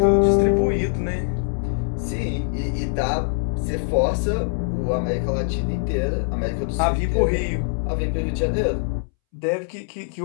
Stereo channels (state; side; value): silent; right; 64 dB below the other